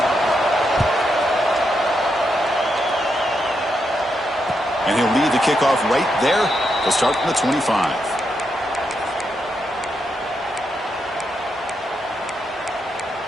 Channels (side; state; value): both; normal; correlation 0.82